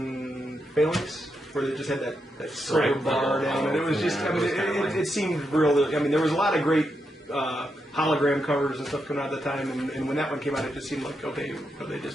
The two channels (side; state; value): both; normal; correlation 0.84